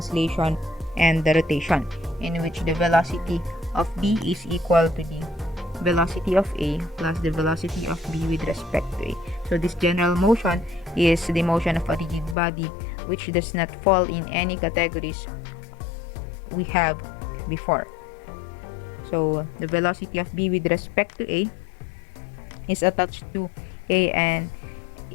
and the rotation, in which the velocity of B is equal to the velocity of A plus the velocity of B with respect to A. So this general motion is the motion of a rigid body which does not fall in any categories we have before. So the velocity of B with respect to A is attached to A and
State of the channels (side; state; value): right; drops out; at 12.4 s